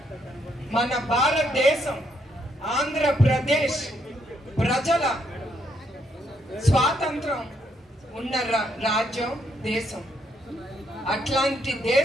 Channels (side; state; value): both; normal; correlation 0.74